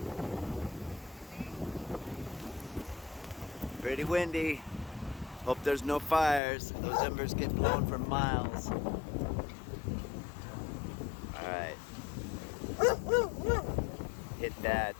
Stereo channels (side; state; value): right; drops out; at 6.4 s